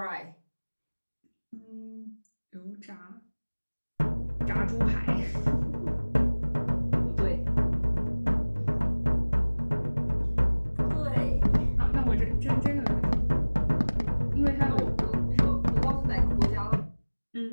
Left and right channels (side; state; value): both; inverted; correlation -1.00